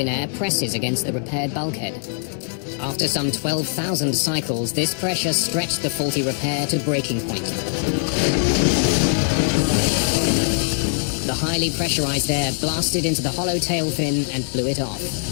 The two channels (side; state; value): right; silent; 64 dB below the other